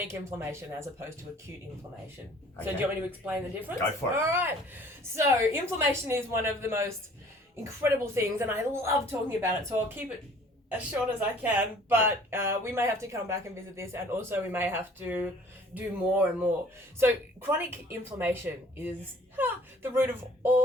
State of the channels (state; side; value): normal; both; correlation 0.53